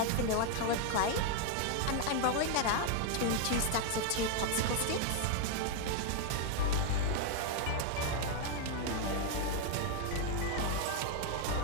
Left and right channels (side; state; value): both; different; correlation 0.00